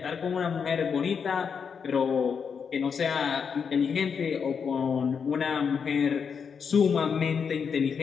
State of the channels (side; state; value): right; quieter; 6.4 dB